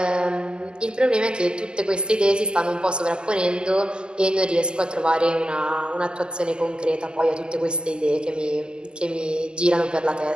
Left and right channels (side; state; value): left; late; 0.047 ms